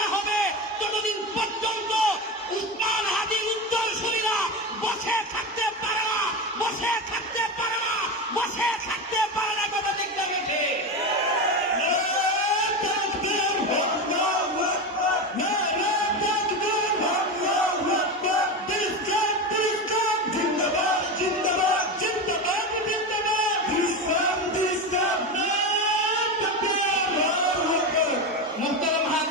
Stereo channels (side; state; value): both; normal; correlation 0.19